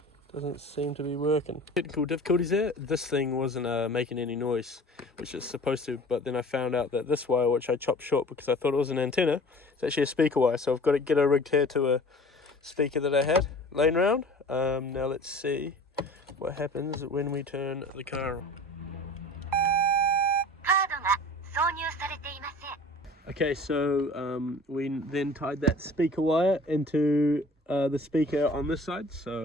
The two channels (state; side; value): normal; both; correlation 0.43